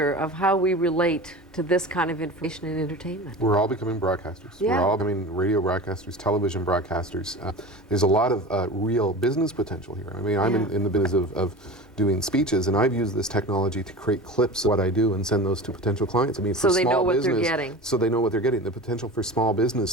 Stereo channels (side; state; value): both; normal; correlation 0.33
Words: of how we relate to this kind of information and entertainment. We're all becoming broadcasters. We're all becoming radio broadcasters, television broadcasters. There's a lot of real business potential here. I mean, I'm in the business of doing speeches, and I've used this technology to create clips of what I do and send those to potential clients. I mean, for so they small know what business, they're getting. So they know what they're getting. The potential for small business